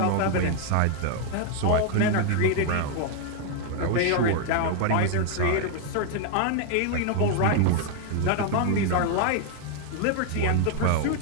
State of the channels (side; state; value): both; different; correlation 0.00